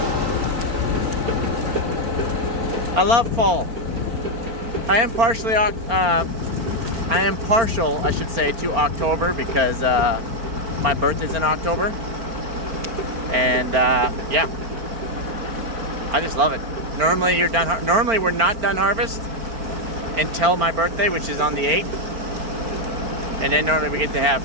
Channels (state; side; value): late; left; 4.4 ms